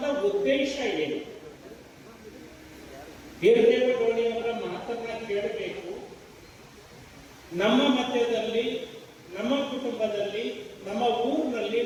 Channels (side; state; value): both; identical; correlation 1.00